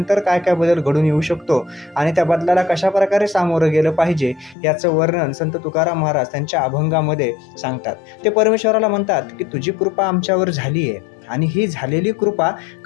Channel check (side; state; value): right; drops out; at 4.5 s